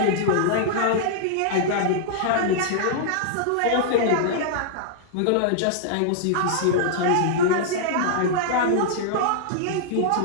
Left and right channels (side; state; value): both; different; correlation -0.02